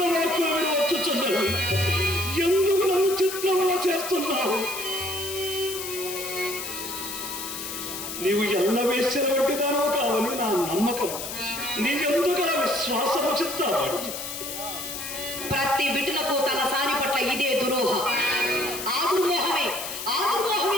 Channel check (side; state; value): left; noise; hiss, 7 dB below the sound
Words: వాక్కులు వినవచ్చుచున్నవి. ఎందుకు నన్ను చిత్రవద చేస్తున్నావు? నీవు ఎల్ల వేశ్యల వంటిదానో కావని నా నమ్మకం. నీకెందుకు విశ్వాసము చింతామణి? ప్రతి బిడ్డలకు తన సాని పట్ల ఇదే దురోహ. ఆ దుర్మోహమే